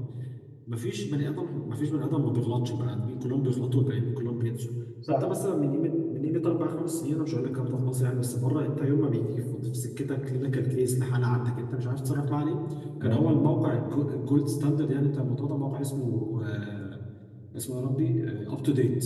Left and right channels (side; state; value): both; identical; correlation 1.00